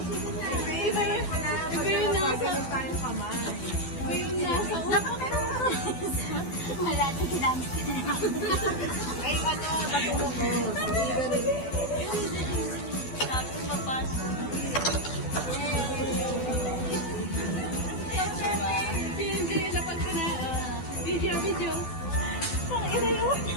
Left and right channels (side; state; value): right; late; 12 ms